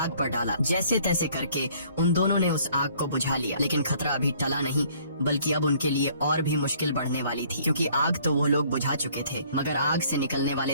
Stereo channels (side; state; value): both; inverted; correlation -0.59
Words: पर डाला। जैसे तैसे करके उन दोनों ने उस आग को बुझा लिया, लेकिन खतरा अभी टला नहीं, बल्कि अब उनके लिए और भी मुश्किल बढ़ने वाली थी, क्योंकि आग तो वो लोग बुझा चुके थे, मगर आग से निकलने